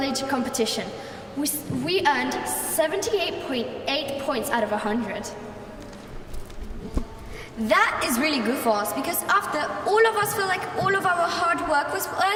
competition. We earned 78.8 points out of 100. That is really good for us because after all of us feel like all of our hard work was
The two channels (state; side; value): identical; both; correlation 1.00